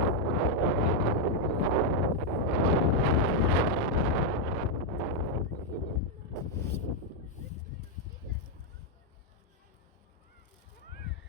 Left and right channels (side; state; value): both; normal; correlation 0.00